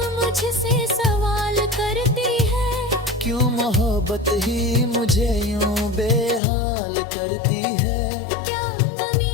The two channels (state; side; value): drops out; right; at 6.4 s